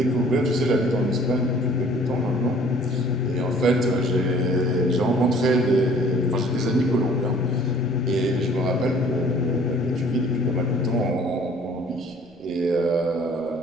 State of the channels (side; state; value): right; noise; rumble, 28 dB below the sound